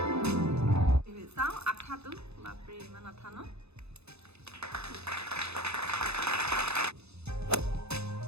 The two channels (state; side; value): late; left; 0.79 ms